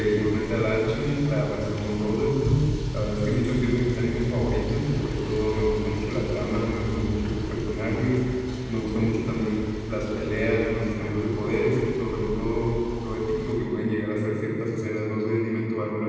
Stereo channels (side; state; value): both; identical; correlation 1.00